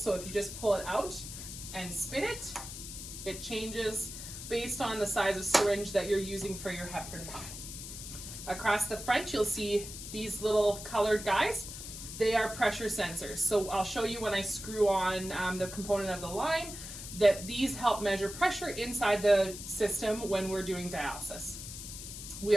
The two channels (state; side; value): noise; left; hiss, 10 dB below the sound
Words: So if you just pull it out and spin it, it changes based on the size of syringe that you're using for your heparin pump. Across the front, you'll see these little colored guys. They are pressure sensors. So I'll show you when I screw on the component of the line that these help measure pressure inside the system when we're doing dialysis. We